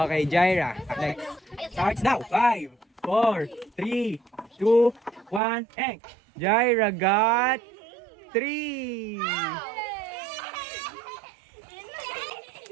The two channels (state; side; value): drops out; left; at 5.4 s